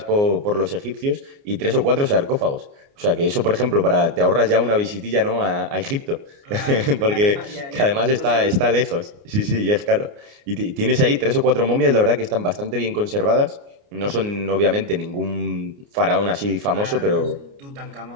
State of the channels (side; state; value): left; late; 29 ms